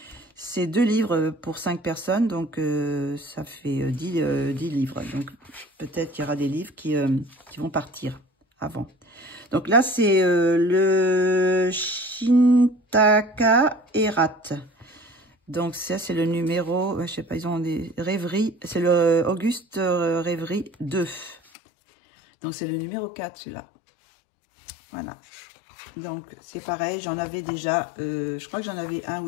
C'est 2 livres pour 5 personnes, donc ça fait 10 livres. Donc, peut-être qu'il y aura des livres qui vont partir avant. Donc là, c'est le Shintaka Erat. Donc ça, c'est le numéro, je sais pas, ils ont des rêveries. C'est le Auguste Rêverie 2. Donc c'est le numéro 4, celui-là. Voilà. Donc c'est pareil, j'en avais déjà, je crois que j'en avais 1 ou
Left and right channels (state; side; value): drops out; right; at 21.4 s